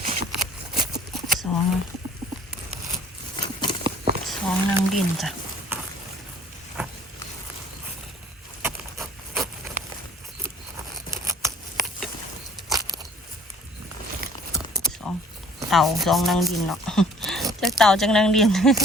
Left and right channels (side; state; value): both; normal; correlation 0.53